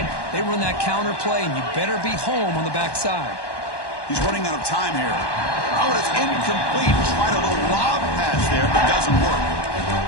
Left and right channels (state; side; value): late; right; 1.1 ms